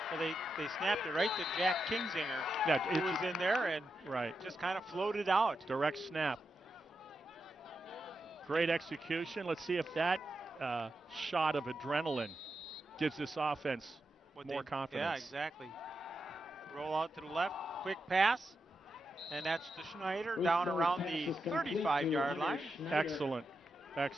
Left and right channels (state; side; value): normal; both; correlation 0.87